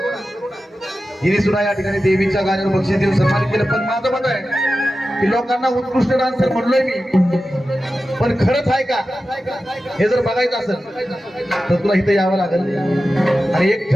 हिने सुद्धा या ठिकाणी देवीच्या गाण्यावर बक्षीस देऊन सन्मानित केलं पण माझं मत आहे की लोकांना उत्कृष्ट डान्सर म्हणलोय मी पण खरंच आहे का हे जर बघायचं असेल तर तुला इथं यावं लागेल आणि एक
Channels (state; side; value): normal; both; correlation 0.93